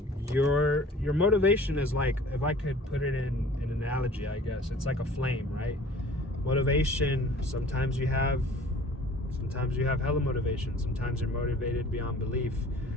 Your motivation is like, if I could put it in an analogy, I guess it's like a flame, right? Motivation, sometimes you have hella motivation. Sometimes you're motivated beyond belief,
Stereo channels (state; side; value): normal; both; correlation 0.48